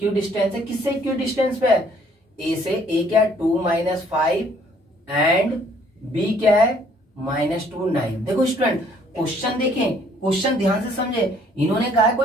है, किससे इक्विडिस्टेंस पे है, A से। A क्या है 2 -5 एंड B क्या है -2 9। देखो स्टूडेंट क्वेश्चन देखें, क्वेश्चन ध्यान से समझे, इन्होंने कहा है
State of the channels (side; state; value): both; normal; correlation 0.61